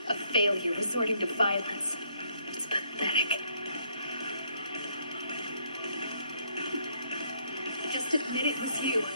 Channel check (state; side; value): inverted; both; correlation -0.70